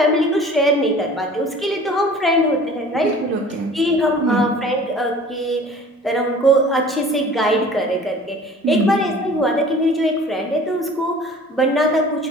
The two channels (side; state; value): both; normal; correlation 0.46